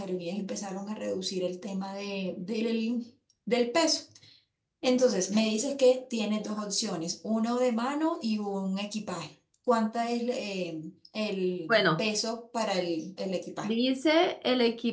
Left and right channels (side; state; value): both; identical; correlation 1.00